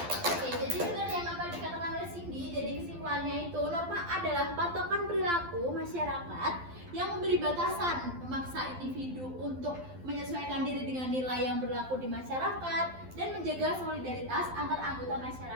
Oke, jadi benar yang apa dikatakan oleh Cindy. Jadi kesimpulannya itu norma adalah patokan perilaku masyarakat yang memberi batasan, memaksa individu untuk menyesuaikan diri dengan nilai yang berlaku di masyarakat dan menjaga solidaritas antar anggota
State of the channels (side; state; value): left; late; 12 ms